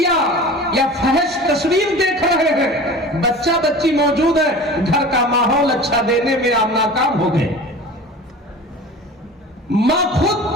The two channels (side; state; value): both; normal; correlation 0.38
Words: یا فحش تصویر دیکھ رہے ہیں، بچہ بچی موجود ہے، گھر کا ماحول اچھا دینے میں آپ ناکام ہو گئے۔ ماں خود